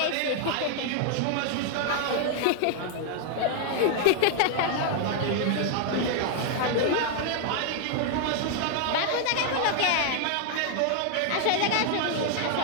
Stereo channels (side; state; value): both; different; correlation 0.00